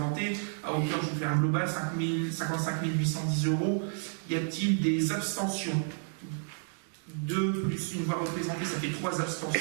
à hauteur, je vous fais un global, 55 810 €. Y a-t-il des abstentions? 2 plus une voix représentée, ça fait 3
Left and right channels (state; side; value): silent; left; digital silence